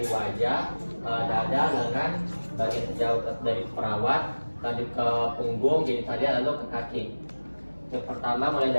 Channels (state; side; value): inverted; both; correlation -1.00